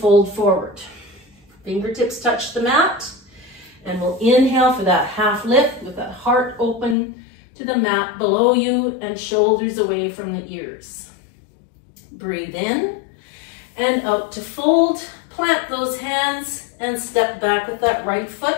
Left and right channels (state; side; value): drops out; right; at 7.0 s